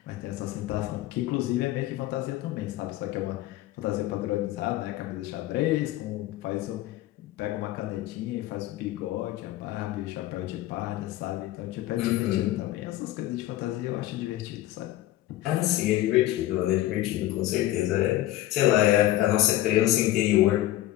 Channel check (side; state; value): right; quieter; 15.2 dB